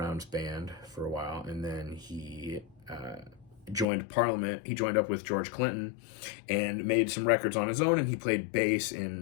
band for a while, and then he joined Parliament. He joined up with George Clinton and made some records on his own, and he played bass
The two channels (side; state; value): right; drops out; at 3.9 s